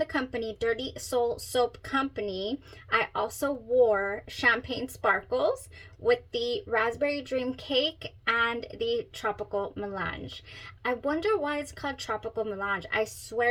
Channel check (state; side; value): identical; both; correlation 1.00